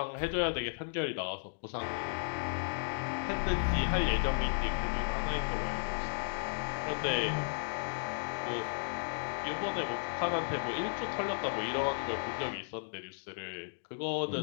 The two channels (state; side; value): silent; right; digital silence